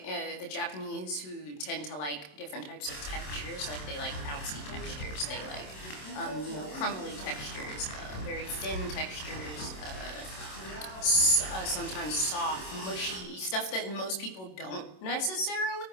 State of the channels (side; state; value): right; late; 27 ms